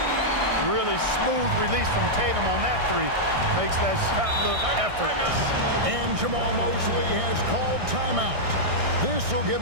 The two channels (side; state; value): left; late; 1.6 ms